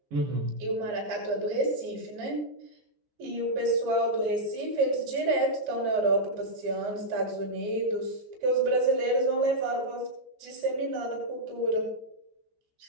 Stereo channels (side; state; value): left; late; 14 ms